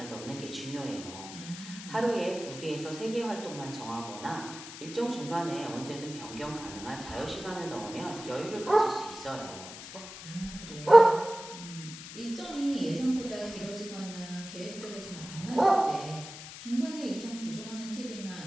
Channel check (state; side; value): noise; left; hiss, 12 dB below the sound